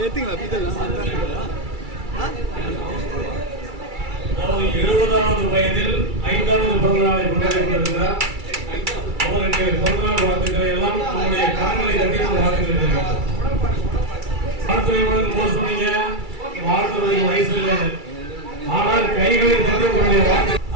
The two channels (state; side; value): late; left; 2.3 ms